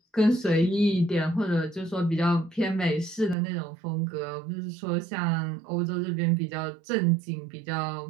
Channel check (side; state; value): left; drops out; at 3.4 s